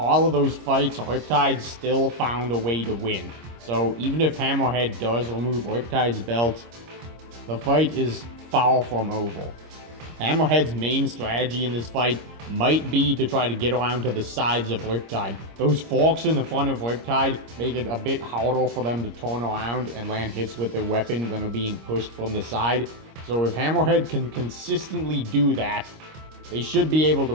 of those fights, Riptide still found a way to win. So even if Hammerhead does remove Riptide's belt, the fight is far from over. Hammerhead's main strategy in this fight might be to try to get around to the sides of Riptide. Those forks in the front of Riptide make it a bit harder for them to turn around and land hits with their weapon when they're being pushed from the side. So if Hammerhead can consistently do that, they should be able to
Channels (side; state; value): left; late; 26 ms